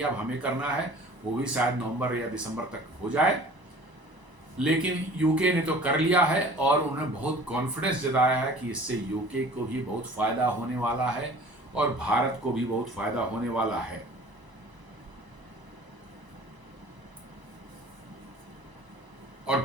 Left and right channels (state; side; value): late; left; 1.0 ms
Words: अब हमें करना है, वो भी शायद नवंबर या दिसंबर तक हो जाए। लेकिन यूके ने तो कर लिया है और उन्होंने बहुत कॉन्फिडेंस जताया है कि इससे यूके को भी बहुत फायदा होने वाला है और भारत को भी बहुत फायदा होने वाला है। और